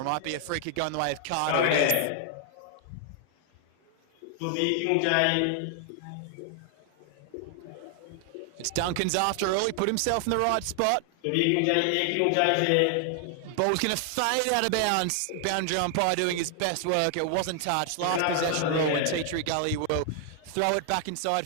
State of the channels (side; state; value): both; different; correlation 0.00